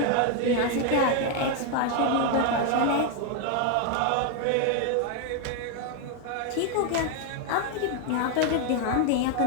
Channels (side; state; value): both; different; correlation 0.01